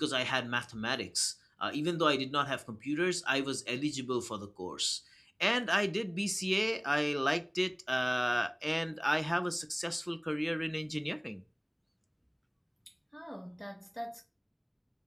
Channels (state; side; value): identical; both; correlation 1.00